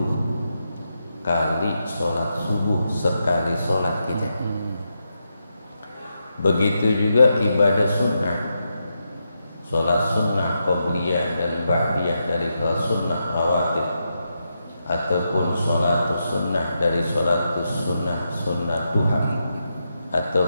kali sholat subuh sekali sholat kita. Begitu juga ibadah sunnah, sholat sunnah qobliyah dan ba'diyah dari sholat sunnah rawatib, ataupun sholat sunnah dari sholat sunnah duha,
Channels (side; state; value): both; inverted; correlation -0.85